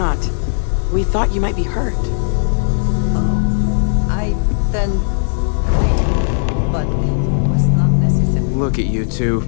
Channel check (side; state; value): right; silent; digital silence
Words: We thought you might be hurt. Oh, then thank you, but it was not necessary. Look at you two.